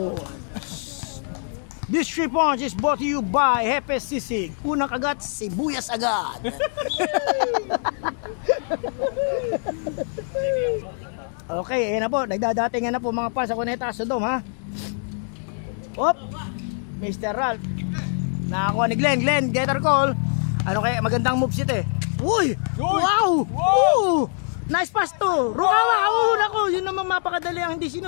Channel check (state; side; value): silent; right; 63 dB below the other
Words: This 3 points is brought to you by Hepe Sisig. Unang kagat, sibuyas agad. Okay, ayan na po. Nagdadatingan na po mga fans sa Cuneta Sodom, ha? Op! Mr. Ralph. Nakakuha ni Glenn. Gather call. Ano kaya? Magandang moves ito, eh. Uy! Wow! Ooh! Nice pass to! Rukawa! Nako! Yun naman mapakadali ang hindi